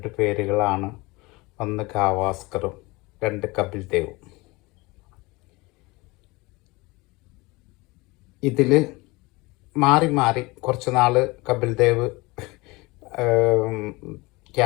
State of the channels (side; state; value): right; quieter; 23.6 dB